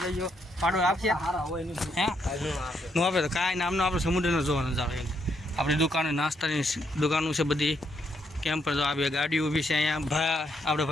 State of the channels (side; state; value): both; normal; correlation 0.76